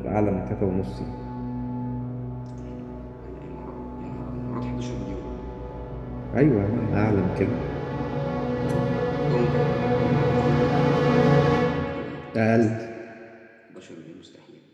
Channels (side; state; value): both; identical; correlation 1.00